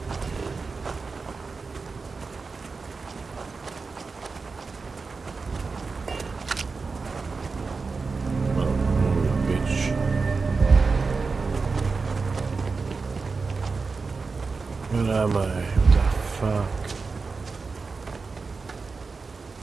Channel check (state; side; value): quieter; left; 4.4 dB